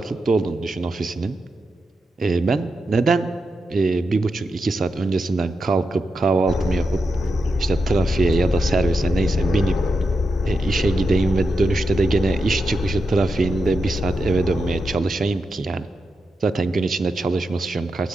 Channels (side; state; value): both; normal; correlation 0.87